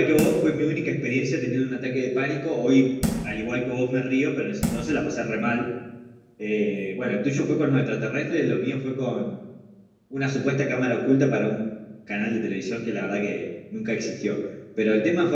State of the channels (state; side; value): identical; both; correlation 1.00